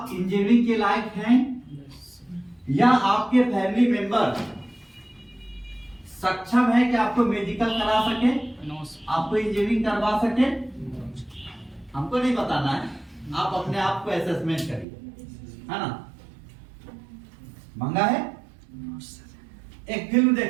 इंजीनियरिंग के लायक हैं या आपके फैमिली मेंबर सक्षम है कि आपको मेडिकल करा सके, आपको इंजीनियरिंग करवा सके? हमको नहीं बताना है, आप अपने आप को असेसमेंट करिए, है ना। मंगा है। एक फिल्म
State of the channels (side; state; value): left; drops out; at 14.9 s